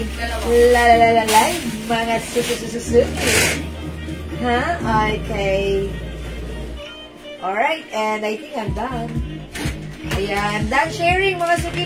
live, mga suki. Ha? Okay. Alright, and I think I'm done. Ayan, done sharing mga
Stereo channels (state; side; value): identical; both; correlation 1.00